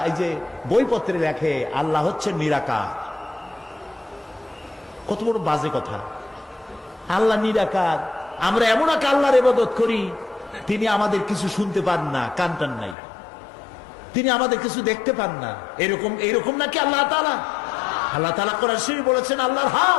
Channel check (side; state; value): right; drops out; at 13.0 s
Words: এই যে বইপত্রে লেখে আল্লাহ হচ্ছে নিরাকার, কত বড় বাজে কথা। আল্লাহ নিরাকার, আমরা এমন এক আল্লাহর ইবাদত করি তিনি আমাদের কিছু শুনতে পান না, কান টান নাই, তিনি আমাদের কিছু দেখতে পান না। এরকম নাকি আল্লাহ তাআলা? আল্লাহ তাআলা কোরআন শরীফে বলেছেন আল্লাহর